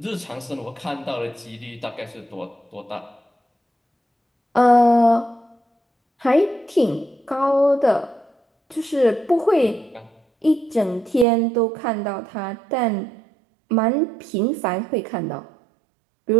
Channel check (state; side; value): drops out; left; at 11.2 s